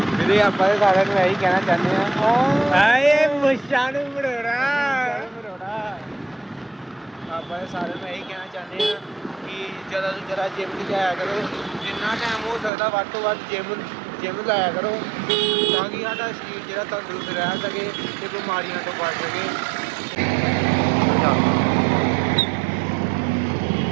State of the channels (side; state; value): left; drops out; at 12.7 s